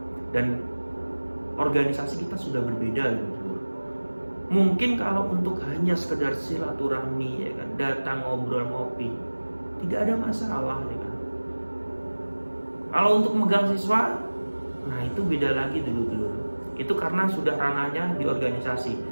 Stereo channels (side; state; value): both; inverted; correlation -1.00